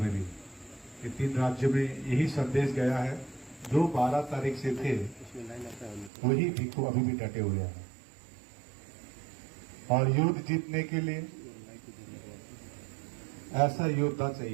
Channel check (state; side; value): drops out; left; at 6.1 s